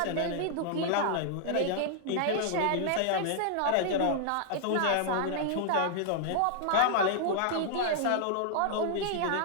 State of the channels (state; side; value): different; both; correlation -0.01